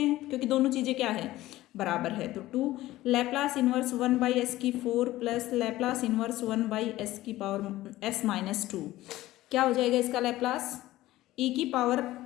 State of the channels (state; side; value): quieter; right; 16.3 dB